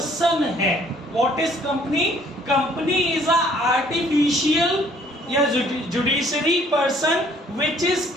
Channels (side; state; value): both; normal; correlation 0.60